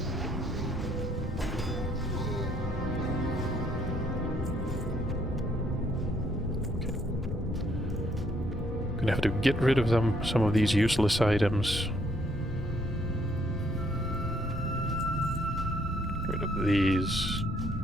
Gonna have to get rid of some of these useless items. Get rid of these.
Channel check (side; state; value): both; normal; correlation 0.68